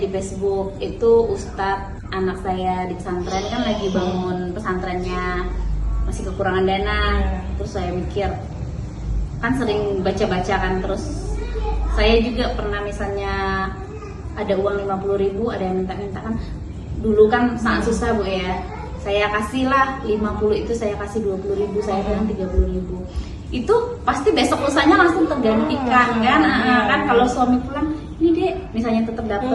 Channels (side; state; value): both; identical; correlation 1.00